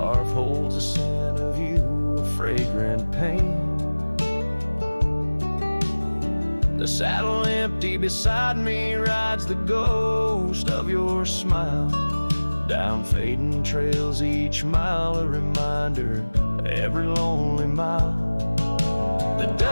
holds a scent of you, a fragrant pain. The saddle empty beside me rides the ghost of your smile. Down fading trails each mile, a reminder of every lonely mile. The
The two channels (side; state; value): both; inverted; correlation -1.00